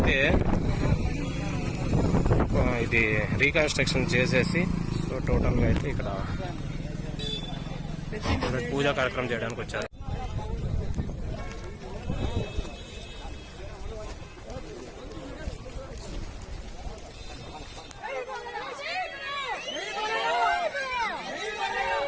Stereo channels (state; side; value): identical; both; correlation 1.00